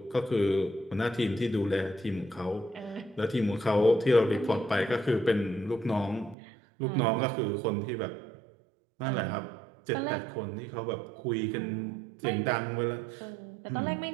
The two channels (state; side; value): drops out; left; at 6.4 s